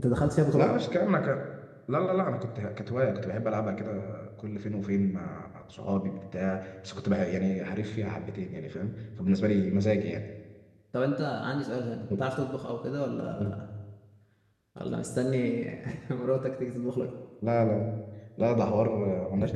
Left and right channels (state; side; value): identical; both; correlation 1.00